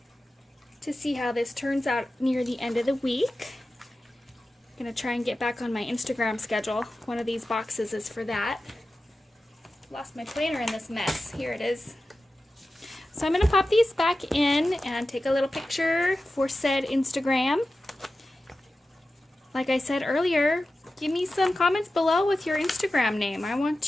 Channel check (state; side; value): normal; both; correlation 0.94